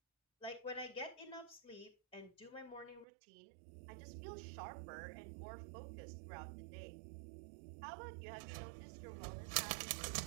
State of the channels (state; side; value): drops out; left; at 3.1 s